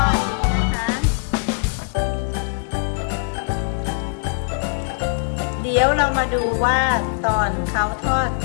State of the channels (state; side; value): silent; right; digital silence